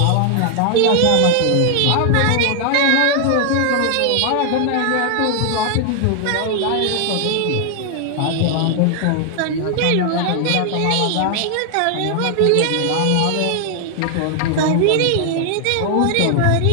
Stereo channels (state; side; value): different; both; correlation 0.00